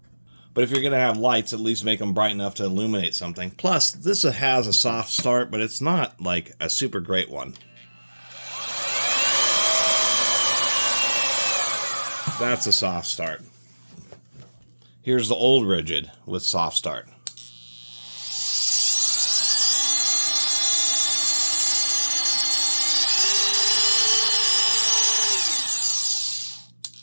But if you're going to have lights, at least make them bright enough to illuminate something. Plus, this has a soft start, but it's not like a super great one. That's a soft start. Here's the old Ridgid with soft start.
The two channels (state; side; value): inverted; both; correlation -1.00